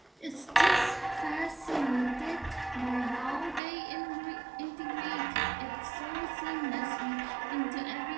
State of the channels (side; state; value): left; drops out; at 3.6 s